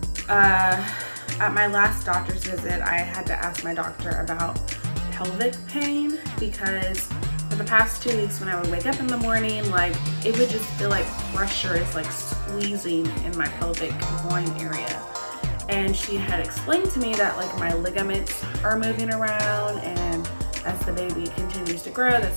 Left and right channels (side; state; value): both; inverted; correlation -1.00